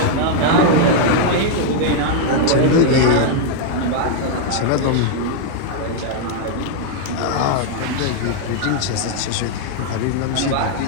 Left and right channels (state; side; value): different; both; correlation 0.00